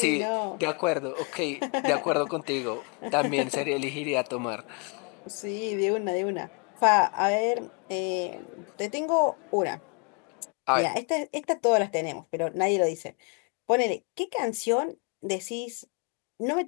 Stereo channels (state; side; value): quieter; right; 36.4 dB